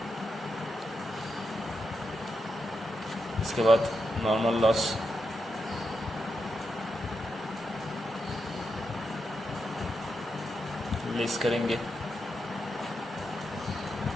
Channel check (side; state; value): both; normal; correlation 0.85